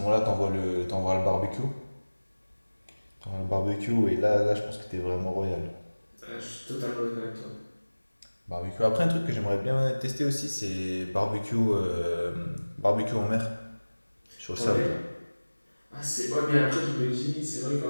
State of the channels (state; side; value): inverted; both; correlation -1.00